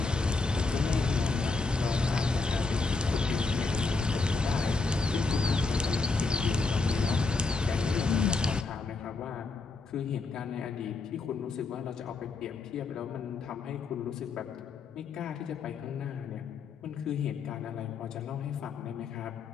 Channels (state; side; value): quieter; right; 4.0 dB